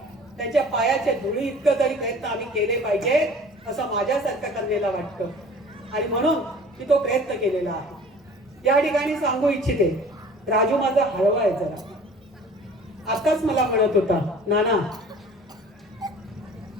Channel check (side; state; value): both; normal; correlation 0.47